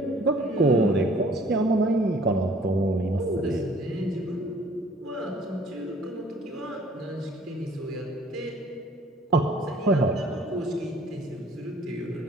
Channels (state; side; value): normal; both; correlation 0.55